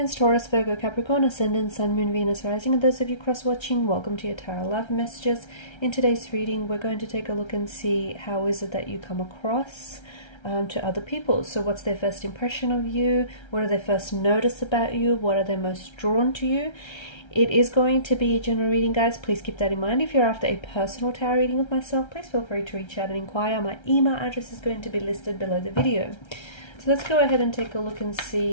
Taurus, Virgo, Capricorn, Ascendant, Sun, Moon, Venus, Rising, and those of you cross-watching, welcome to your Tarot Love Messages. In today's reading, we're going to take a look and see how is it that you come across to other people. So what's their first impression of you? What do they first notice about you? What are they most drawn to you? It is going to be a general reading, guys. Please keep that in mind. If you're after a personal tarot reading with myself, please feel free to reach out and inquire. My email address is going to be listed below the video. So let's go ahead and take a look and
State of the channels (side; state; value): right; late; 1.3 ms